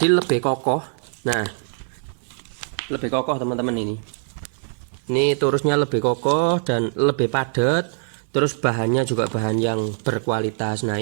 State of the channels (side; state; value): left; silent; digital silence